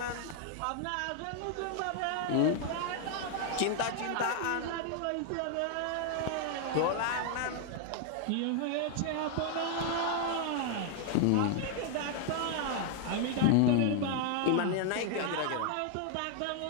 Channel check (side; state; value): both; different; correlation 0.00